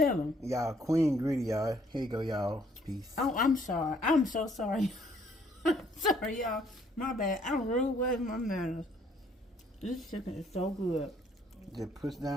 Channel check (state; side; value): normal; both; correlation 0.64